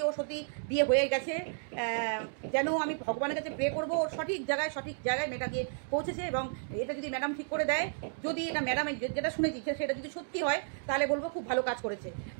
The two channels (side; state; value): left; silent; digital silence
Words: সত্যি বিয়ে হয়ে গেছে, যেন আমি ভগবানের কাছে প্রে করবো ওর সঠিক জায়গায় মেয়েটা গিয়ে পৌঁছেছে। এবং এটা যদি ম্যাডাম ঠিক করে দেয়, যদি এটা ম্যাডামে যেটা শুনেছি সেটা যদি সত্যি হয়, তাহলে বলবো খুব ভালো কাজ করেছে।